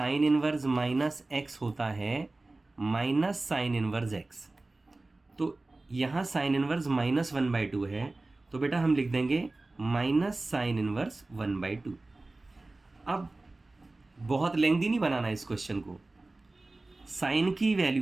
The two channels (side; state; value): left; quieter; 3.1 dB